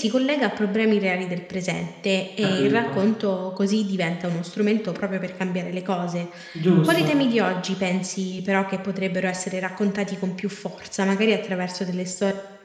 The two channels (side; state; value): both; identical; correlation 1.00